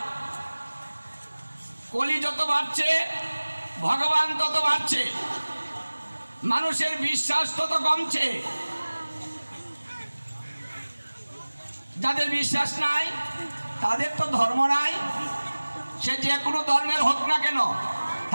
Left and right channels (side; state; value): both; inverted; correlation -1.00